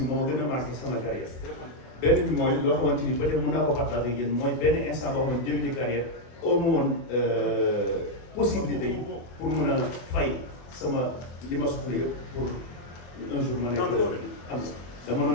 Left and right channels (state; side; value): late; right; 24 ms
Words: moo gën a marqué sama carrière benn bi mooy loo xamante ni peut-être mën naa ko partager ak yéen mooy benn instant boo xam ne début de carrière au moins possibilité yi pour mën a fay sama li ma soxla yëpp pour un jour ma nekk am dama